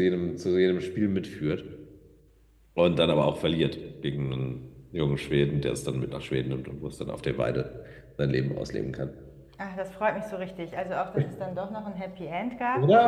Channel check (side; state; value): both; identical; correlation 1.00